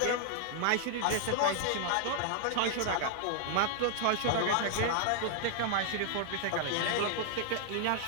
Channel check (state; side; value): different; both; correlation 0.00